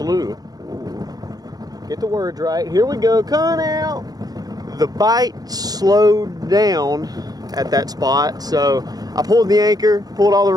Get the words right. Here we go. Come out. The bite slowed down at that spot, so I pulled the anchor, pulled all the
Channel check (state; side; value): late; left; 0.19 ms